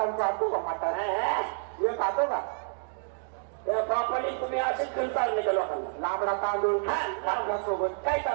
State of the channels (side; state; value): left; silent; 59 dB below the other